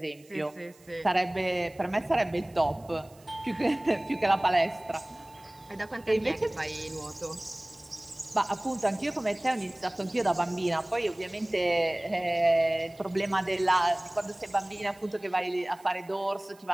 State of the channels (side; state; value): right; noise; hiss, 27 dB below the sound